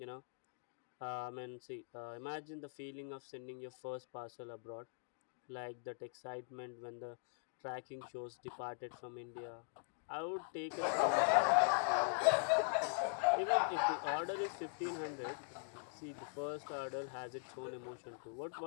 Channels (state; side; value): silent; right; digital silence